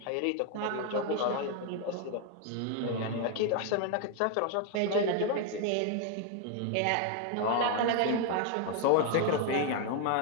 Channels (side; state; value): both; different; correlation 0.01